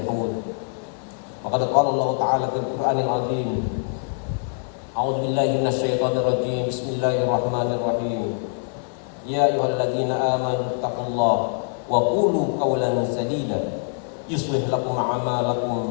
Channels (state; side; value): silent; right; digital silence